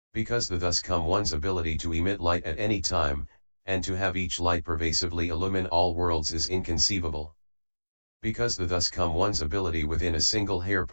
Because the thus come one's ability to emit light at any time, and to have each light pervasively illumine all worlds is inconceivable. Because the thus come one's ability within a single hair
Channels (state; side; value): inverted; both; correlation -1.00